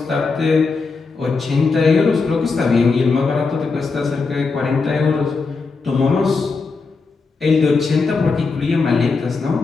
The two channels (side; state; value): right; quieter; 4.4 dB